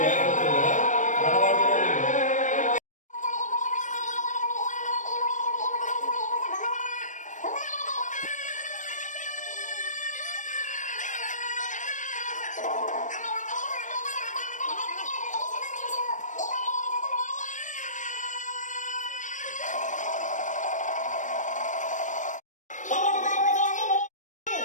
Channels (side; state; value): right; late; 0.37 ms